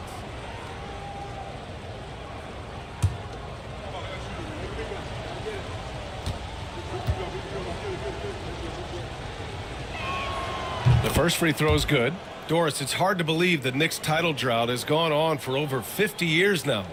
The first free throw is good. Doris, it's hard to believe the Knicks title drought has gone on for over 50 years now.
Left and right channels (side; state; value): both; identical; correlation 1.00